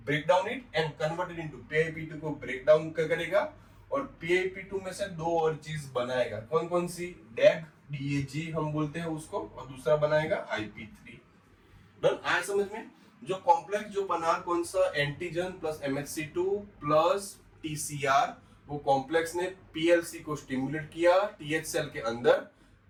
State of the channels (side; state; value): both; identical; correlation 1.00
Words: break down it and convert it into PIP2 को ब्रेक डाउन करेगा, और PIP2 में से दो और चीज बनाएगा। कौन कौन सी? DAG DAG हम बोलते हैं उसको, और दूसरा बनाएगा IP3। डन, आया समझ में? जो कॉम्प्लेक्स जो बना कौन सा, antigen plus MHC2 plus TCR, वो कॉम्प्लेक्स ने PLC को स्टिमुलेट किया TH सेल के अंदर।